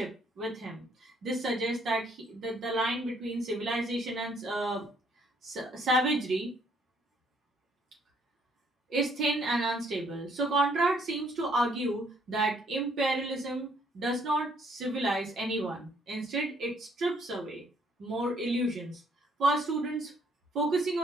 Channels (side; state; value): both; normal; correlation 0.66